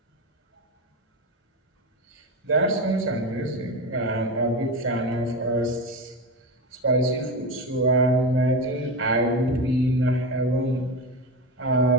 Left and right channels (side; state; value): both; normal; correlation 0.20